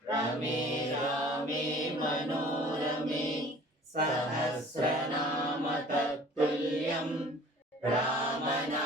రమే రామే మనోరమే సహస్రనామ తత్తుల్యం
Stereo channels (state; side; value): normal; both; correlation 0.48